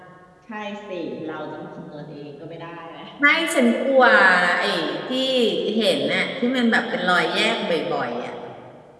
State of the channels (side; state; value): both; identical; correlation 1.00